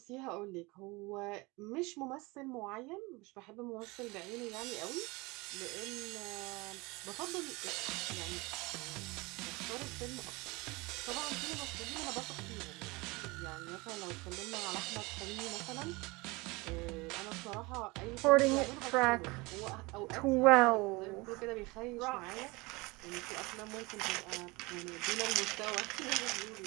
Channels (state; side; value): quieter; left; 24.5 dB